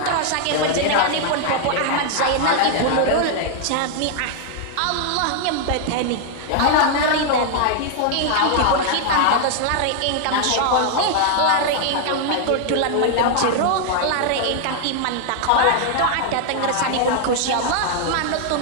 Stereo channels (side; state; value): both; different; correlation 0.00